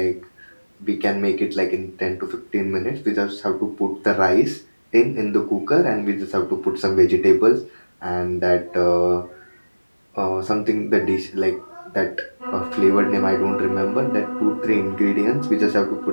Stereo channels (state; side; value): inverted; both; correlation -1.00